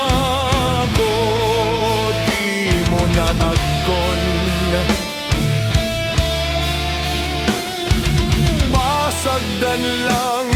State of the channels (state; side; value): identical; both; correlation 1.00